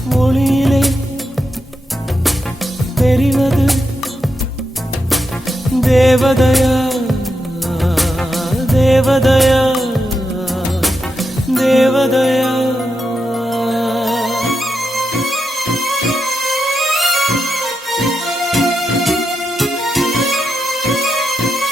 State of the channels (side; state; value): both; normal; correlation 0.86